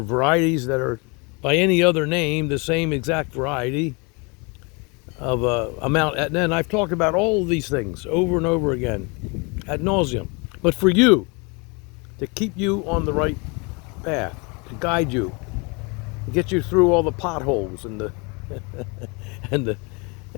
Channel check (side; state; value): right; quieter; 30.4 dB